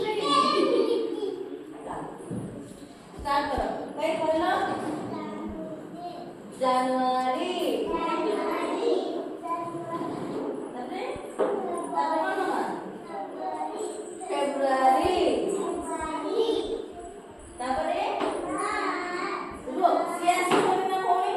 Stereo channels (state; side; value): identical; both; correlation 1.00